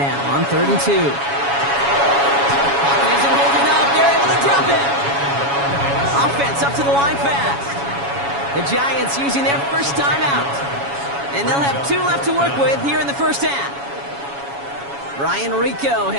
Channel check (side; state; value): left; late; 7.2 ms